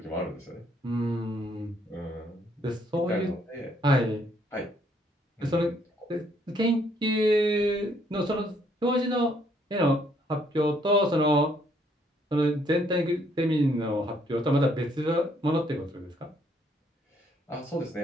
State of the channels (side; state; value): both; normal; correlation 0.68